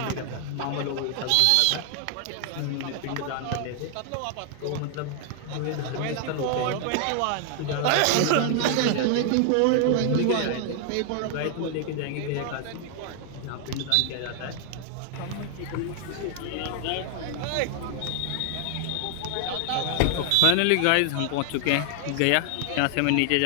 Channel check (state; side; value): different; both; correlation 0.00